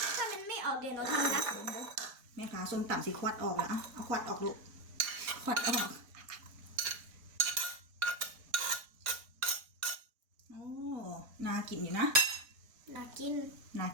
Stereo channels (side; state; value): left; late; 4.2 ms